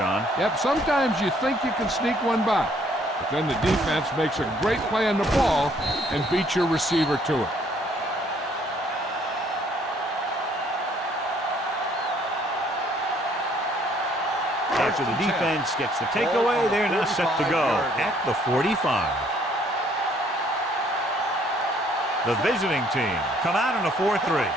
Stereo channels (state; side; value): normal; both; correlation 0.63